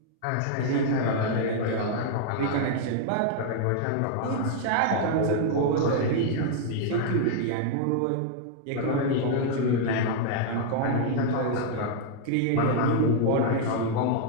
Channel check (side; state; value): both; different; correlation -0.01